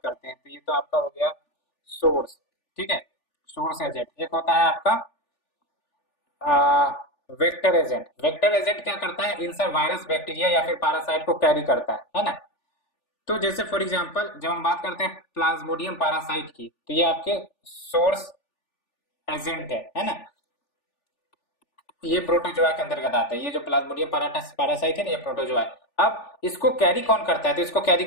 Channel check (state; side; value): late; right; 3.4 ms